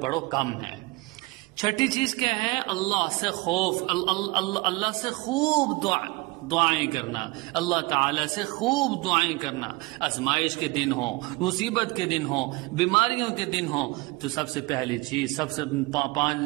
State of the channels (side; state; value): left; quieter; 23.8 dB